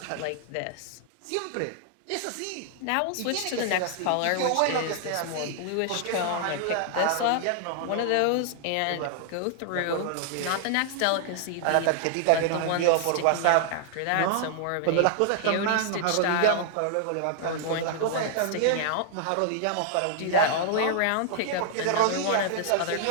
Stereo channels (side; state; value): both; different; correlation -0.01